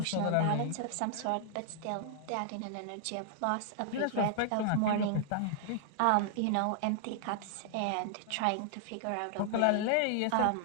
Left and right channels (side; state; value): both; different; correlation -0.01